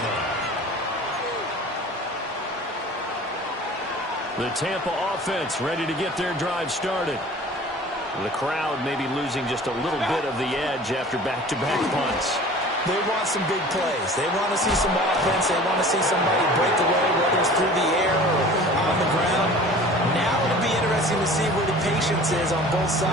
line. The Tampa offense ready to get their drive started. The crowd may be losing just a little bit of the edge after back-to-back punts. They want some big plays. They want to see some offense. They want to see somebody break away, whether it's through the air or on the ground. Now it'll be interesting to see where the patience is on both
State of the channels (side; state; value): both; normal; correlation 0.43